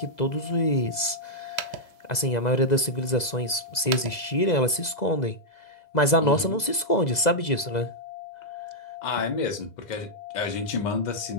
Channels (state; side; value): late; right; 2.0 ms